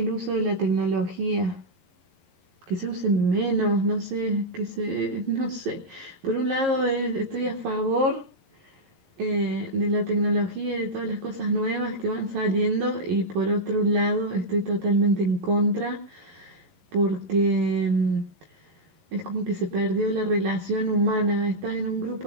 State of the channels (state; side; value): late; left; 11 ms